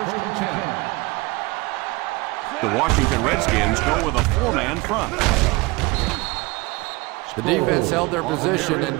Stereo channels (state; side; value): quieter; left; 23.5 dB